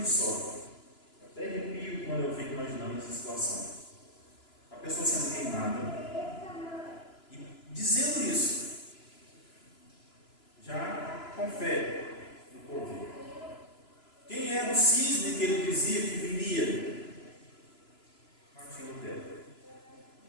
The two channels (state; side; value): late; right; 2.9 ms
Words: só, até arrepio quando eu fico imaginando essa situação. A pessoa sendo queimada e dizendo isso, já com fé no porvir. Quem era o cisne que ele dizia que viria? Martinho